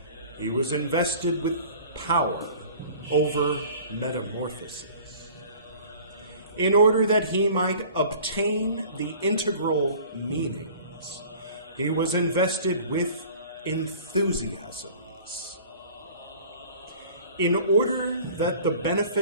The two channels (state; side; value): inverted; both; correlation -0.46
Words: he was invested with power over metamorphosis. In order that he might obtain the integral meanings, he was invested with enthusiasms. In order that the